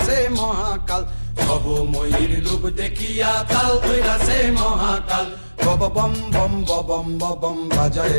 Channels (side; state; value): both; inverted; correlation -1.00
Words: মহাকাল, ভবময়ীর রূপ দেখিয়া তাল ধইরাছে মহাকাল। বব বম বম বম বম বাজায়